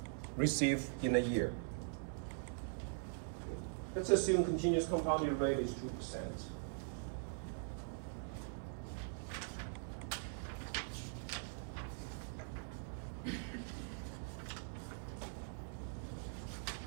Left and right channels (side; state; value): left; silent; digital silence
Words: received in a year. Let's assume continuous compounded rate is 2%.